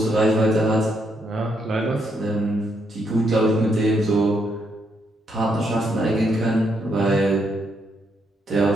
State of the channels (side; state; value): both; normal; correlation 0.77